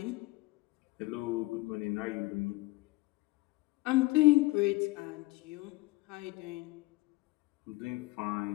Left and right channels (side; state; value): right; quieter; 21.7 dB